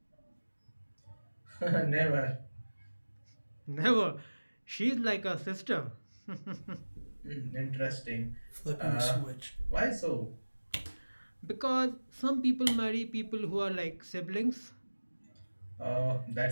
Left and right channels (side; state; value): both; inverted; correlation -1.00